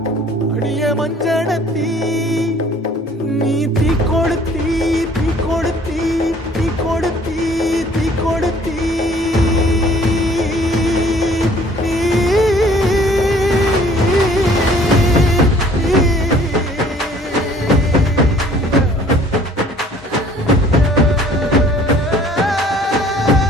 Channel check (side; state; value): both; normal; correlation 0.55